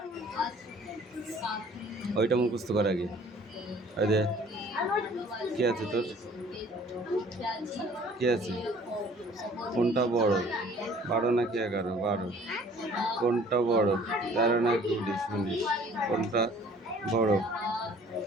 ওইটা মুখস্থ কর আগে। আরে কি আছে তোর? কি আছে? কোনটা বড়? 12 নাকি 11? 12। কোনটা বড়? 13 নাকি 19? 19। কোনটা বড়?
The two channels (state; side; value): normal; both; correlation 0.53